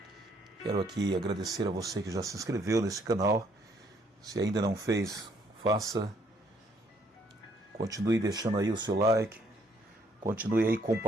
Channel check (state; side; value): normal; both; correlation 0.67